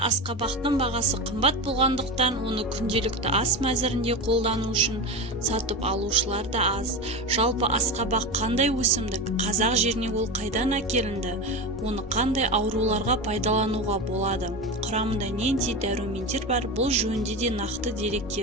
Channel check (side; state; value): both; normal; correlation 0.22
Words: асқабақтың бағасы қымбат болғандықтан оны күнделікті ас мәзірінде қолдану үшін сатып алушылар да аз. Жалпы асқабақ қандай өсімдік, қазақ жеріне ол қайдан әкелінді, оны қандай ауруларға пайдалануға болады, құрамында нендей дәрумендер бар, бұл жөнінде де нақты